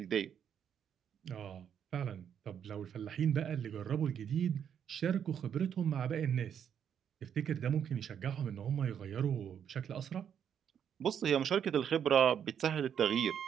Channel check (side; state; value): left; quieter; 8.5 dB